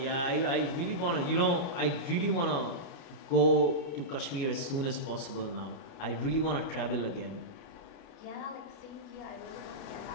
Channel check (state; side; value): late; right; 29 ms